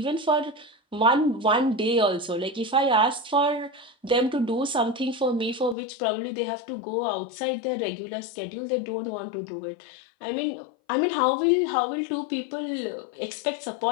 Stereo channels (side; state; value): right; drops out; at 5.8 s